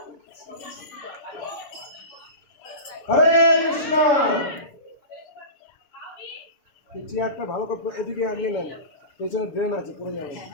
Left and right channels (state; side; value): late; right; 7.0 ms